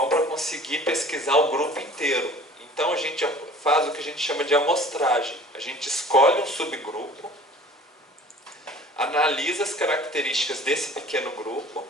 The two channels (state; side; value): normal; both; correlation 0.47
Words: para conseguir pesquisar o grupo inteiro. Então a gente faz o que a gente chama de amostragem. A gente escolhe um subgrupo, analisa as características desse pequeno grupo